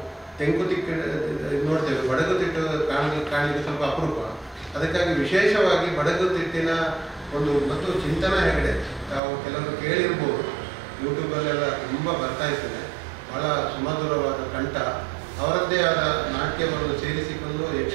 ತೆಂಕುತಿಟ್ಟು ನೋಡ್ತೇವೆ, ಬಡಗುತಿಟ್ಟು ಕಾಣಲಿಕ್ಕೆ ಸ್ವಲ್ಪ ಅಪರೂಪ. ಅದಕ್ಕಾಗಿ ವಿಶೇಷವಾಗಿ ಬಡಗುತಿಟ್ಟಿನ ಮತ್ತು ಚಿಂತನ ಹೆಗಡೆ ನಾವು ಕೆಲವರು ಕೇಳಿರ್ಬೋದು, ಯೂಟ್ಯೂಬಲ್ಲೆಲ್ಲ ತುಂಬ ಬರ್ತಾ ಇರ್ತದೆ. ಬಹಳ ಸುಮಧುರವಾದ ಕಂಠ, ಅವರದ್ದೇ ಆದ ನಾಟ್ಯವನ್ನು ಸೇರಿಸಿಕೊಂಡು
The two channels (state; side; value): drops out; left; at 9.2 s